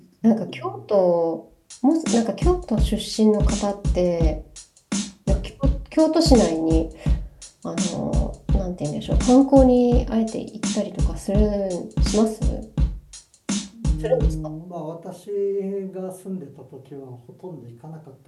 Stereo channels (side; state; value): both; identical; correlation 1.00